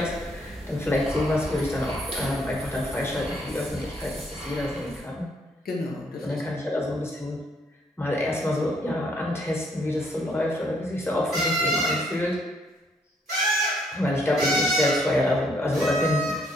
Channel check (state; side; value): normal; both; correlation 0.69